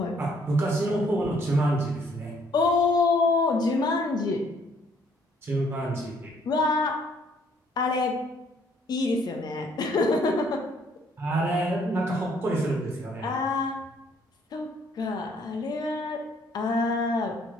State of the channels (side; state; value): both; normal; correlation 0.64